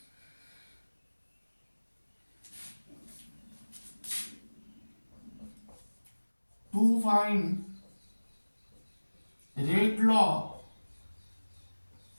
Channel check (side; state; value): both; inverted; correlation -1.00